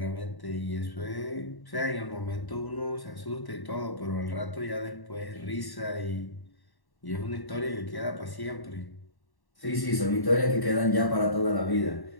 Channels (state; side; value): late; right; 1.1 ms